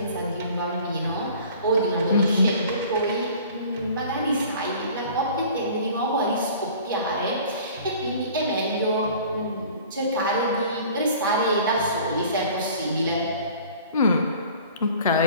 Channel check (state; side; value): inverted; both; correlation -0.47